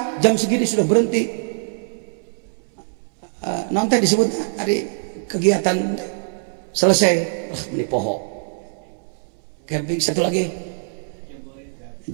jam segini sudah berhenti? Nanti disebut hari kegiatan selesai. Ini pohon. Camping satu lagi.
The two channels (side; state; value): left; silent; 63 dB below the other